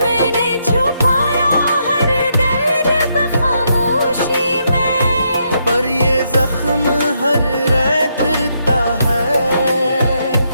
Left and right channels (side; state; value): both; inverted; correlation -0.78